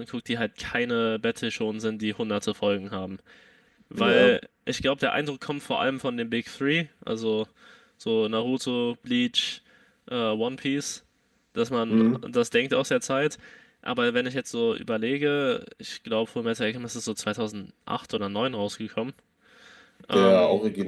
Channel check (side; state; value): both; identical; correlation 1.00